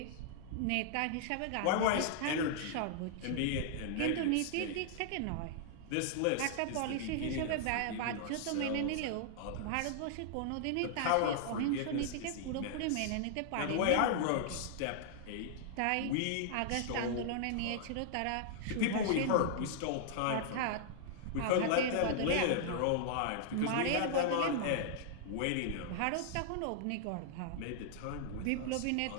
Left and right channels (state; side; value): different; both; correlation -0.01